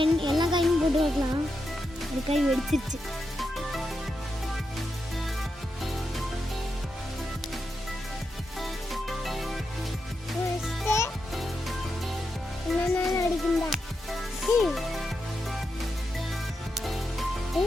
எல்லா காயும் போட்டு வைக்கலாம். ஒரு காய் வெடிச்சிருச்சு. என்ன அடிக்குண்டா?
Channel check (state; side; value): normal; both; correlation 0.86